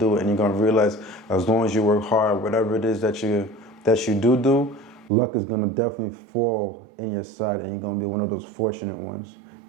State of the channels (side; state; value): left; drops out; at 5.1 s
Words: and you're gonna realize as long as you work hard, whatever it is that you do, luck is gonna definitely fall in your side, and you're gonna be one of those fortunate ones.